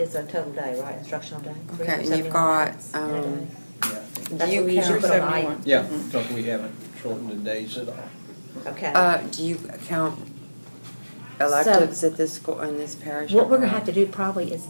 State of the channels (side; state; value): both; inverted; correlation -1.00